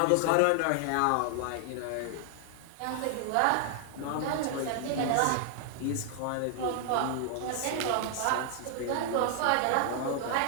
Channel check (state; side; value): different; both; correlation 0.00